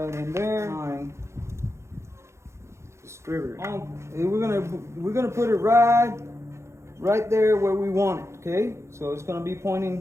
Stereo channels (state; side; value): late; left; 0.13 ms